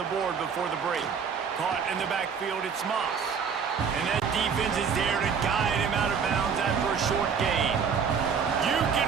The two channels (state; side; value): quieter; left; 6.4 dB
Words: board before the break. Caught in the backfield, it's Moss. And that defense is there to guide him out of bounds after a short gain. You can